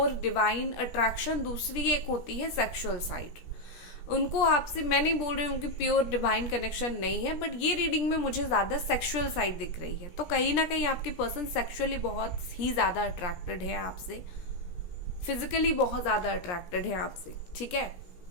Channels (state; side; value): late; right; 16 ms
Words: डिवाइन अट्रैक्शन, दूसरी एक होती है सेक्सुअल साइड। उनको आपसे, मैं नहीं बोल रही हूँ कि प्योर डिवाइन कनेक्शन नहीं है, बट ये रीडिंग में मुझे ज़्यादा सेक्सुअल साइड दिख रही है। तो कहीं ना कहीं आपकी पर्सन सेक्सुअली बहुत ही ज़्यादा अट्रैक्टेड है आपसे, फिजिकली बहुत ज़्यादा अट्रैक्टेड है आपसे, ठीक है।